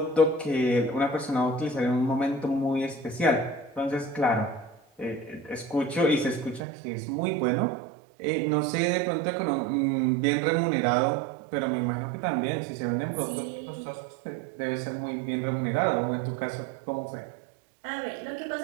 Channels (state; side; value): drops out; left; at 6.6 s